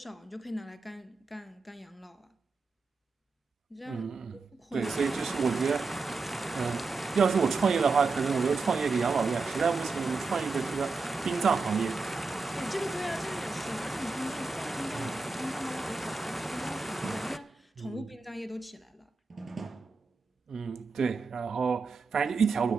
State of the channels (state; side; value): quieter; left; 4.2 dB